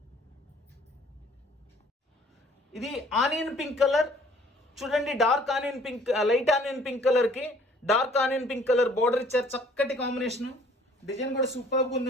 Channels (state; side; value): normal; both; correlation 0.57